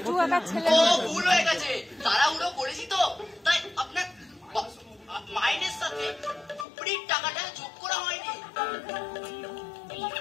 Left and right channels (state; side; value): drops out; right; at 6.7 s